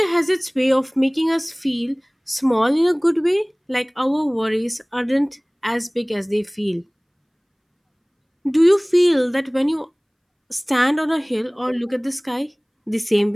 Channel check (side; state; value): both; identical; correlation 1.00